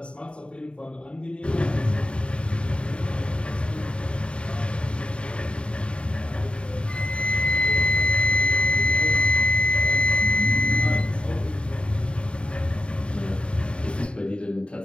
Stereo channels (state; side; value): late; right; 0.056 ms